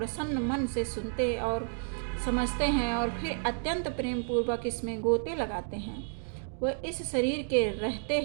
मन से सुनते और समझते हैं और फिर अत्यंत प्रेम पूर्वक इसमें गोते लगाते हैं, वह इस शरीर के रहते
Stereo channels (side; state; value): left; silent; 57 dB below the other